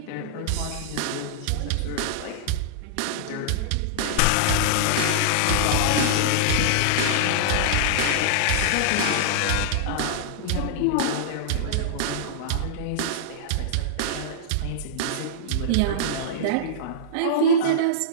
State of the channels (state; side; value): different; both; correlation -0.02